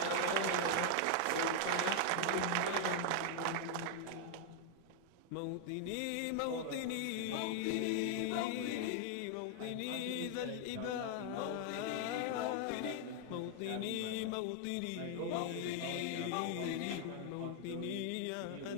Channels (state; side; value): different; both; correlation 0.00